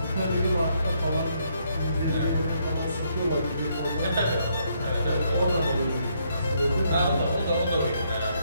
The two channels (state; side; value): inverted; both; correlation -0.73